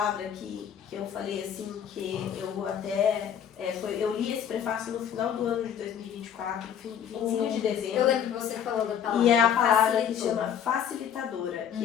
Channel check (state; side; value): quieter; right; 8.7 dB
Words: que eu falei assim, que eu até... eu li esse prefácio no final do ano de 2024, 25 de dezembro. Eu lembro que você falou da palavra. E é a palavra que facilitou. chama facilitadora, que